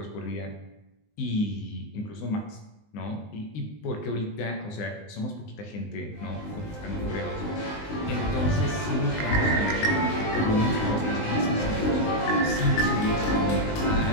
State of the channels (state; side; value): late; right; 19 ms